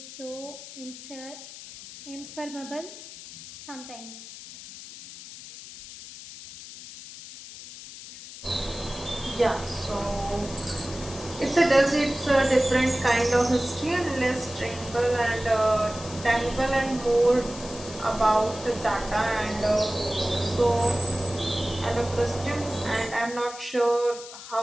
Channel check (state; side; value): noise; left; hiss, 14 dB below the sound